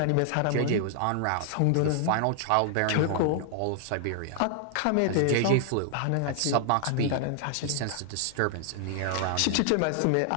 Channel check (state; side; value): different; both; correlation 0.00